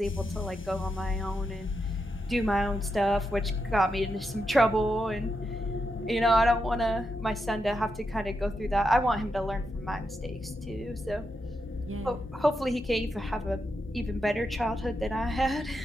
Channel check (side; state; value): both; normal; correlation 0.85